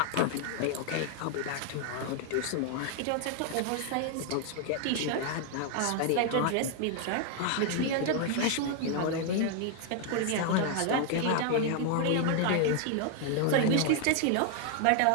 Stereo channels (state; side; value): different; both; correlation 0.00